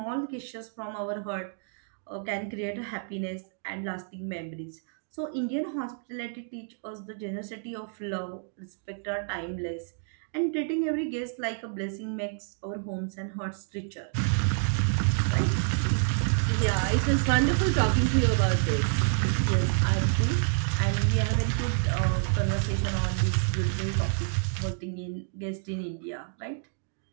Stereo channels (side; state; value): left; silent; digital silence